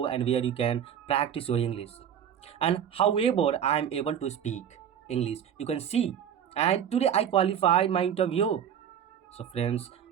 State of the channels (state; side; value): quieter; left; 8.9 dB